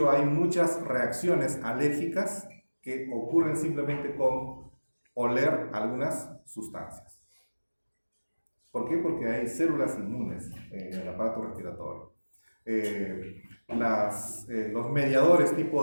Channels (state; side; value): inverted; both; correlation -1.00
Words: hay muchas reacciones alérgicas que ocurren simplemente con oler algunas sustancias. ¿Por qué? Porque hay células inmunes en el aparato respiratorio. Los mediadores